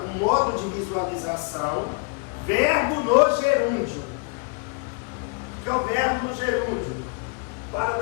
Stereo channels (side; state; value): right; quieter; 34.9 dB